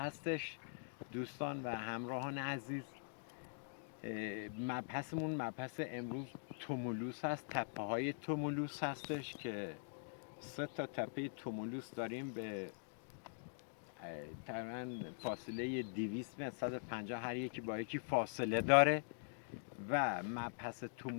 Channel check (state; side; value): silent; right; digital silence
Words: دوستان و همراهان عزیز. مبحثمون مبحث امروز تومولوس هست، تپه های تومولوس هستش که 3 تا تپه تومولوس داریم به تقریباً فاصله 200 متر 150 هر یکی با یکی فاصله داره و مبحث